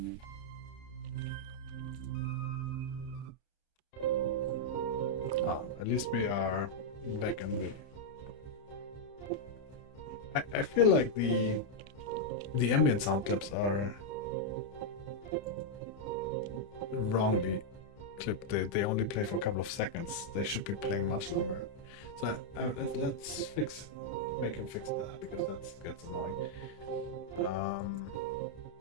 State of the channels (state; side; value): late; right; 30 ms